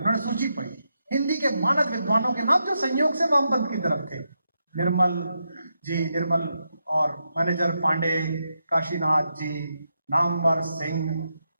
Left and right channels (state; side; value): inverted; both; correlation -0.84